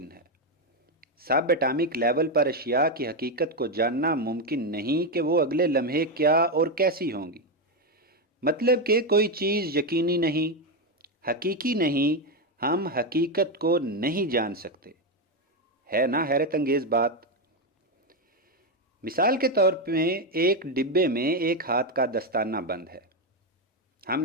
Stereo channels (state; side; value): normal; both; correlation 0.07